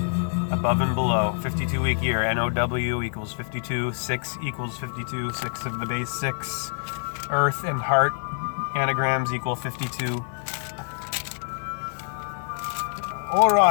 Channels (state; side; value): silent; right; digital silence